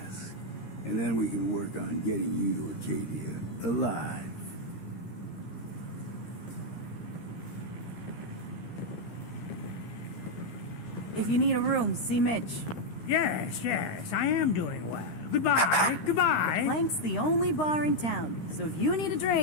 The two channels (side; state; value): right; late; 13 ms